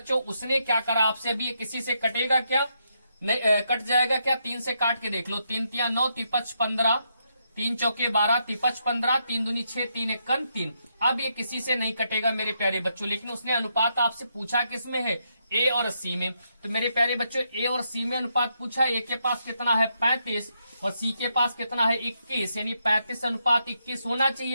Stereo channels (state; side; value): inverted; both; correlation -0.79